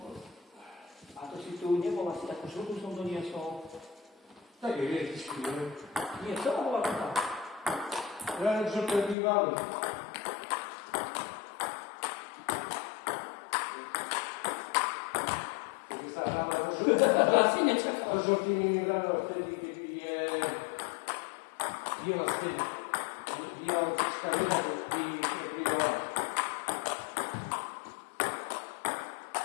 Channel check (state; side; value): drops out; right; at 9.2 s